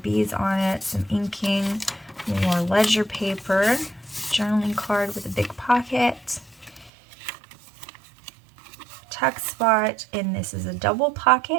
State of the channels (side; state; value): left; drops out; at 6.9 s